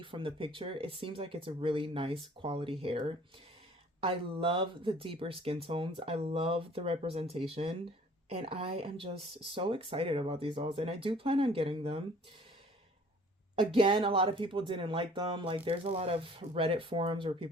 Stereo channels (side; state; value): both; normal; correlation 0.53